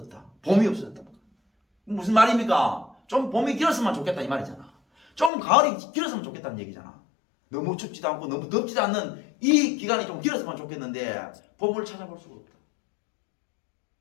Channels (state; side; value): drops out; right; at 5.3 s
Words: 봄이 없어졌다. 무슨 말입니까? 좀 봄이 길었으면 좋겠다 이 말이잖아. 좀 가을이 길었으면 좋겠다는 얘기잖아. 너무 춥지도 않고 너무 덥지도 않는 이 기간이 좀 길었으면 좋겠는데 봄을 찾아볼 수가 없다.